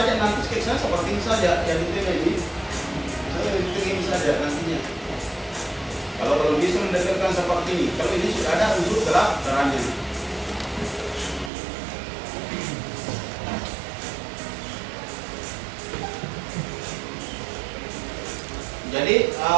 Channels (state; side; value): drops out; left; at 11.5 s